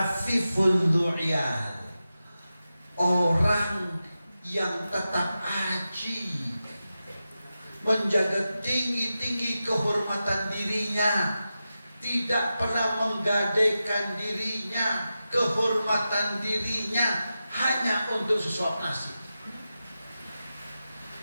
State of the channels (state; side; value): inverted; both; correlation -0.92